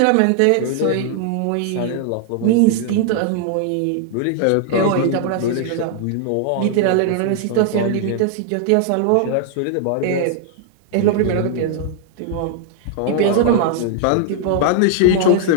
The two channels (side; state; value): both; different; correlation -0.01